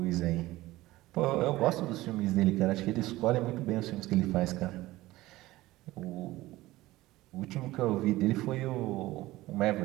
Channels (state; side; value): quieter; left; 17.7 dB